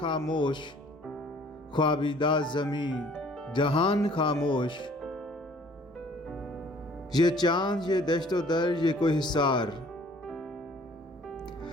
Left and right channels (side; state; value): both; normal; correlation 0.55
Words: ख्वाबिदा ज़मीं जहान खामोश। ये चाँद ये दश्तो दर ये कोई हिसार,